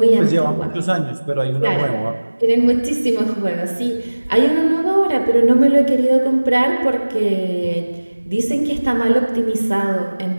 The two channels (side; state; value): both; inverted; correlation -1.00